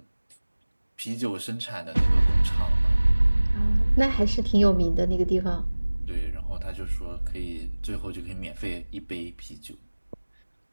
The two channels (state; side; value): inverted; both; correlation -1.00